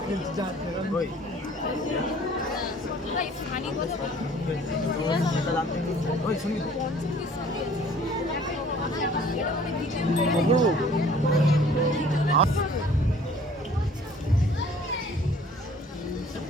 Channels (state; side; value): normal; both; correlation 0.53